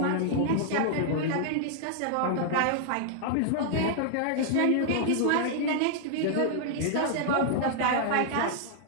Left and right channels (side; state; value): both; different; correlation -0.01